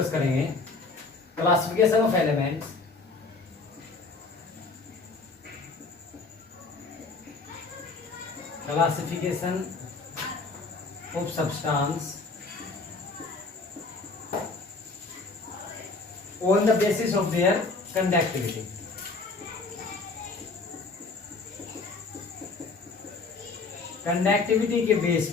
करेंगे classification of elements, classification of substance on the basis of their conductivity. Conductivity के बेस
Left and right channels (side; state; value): right; quieter; 3.9 dB